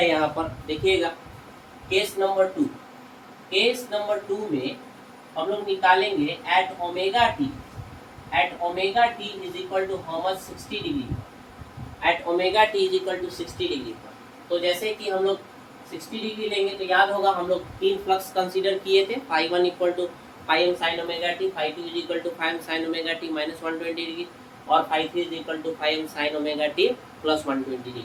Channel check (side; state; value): both; identical; correlation 1.00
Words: यहाँ पर देखिएगा केस नंबर 2 में हम लोग निकालेंगे at omega T is equal to how much 60 degree, at omega T is equal to 60 degree पर। तो जैसे कि हम लोग 60 डिग्री लेंगे तो याद होगा हम लोग 3 फ्लक्स कंसीडर किए थे, φ1 equal to φm sin omega t, φ2 is equal to φm sin omega T minus 120 degree और φ3 is equal to φm sin omega T plus 120 degree.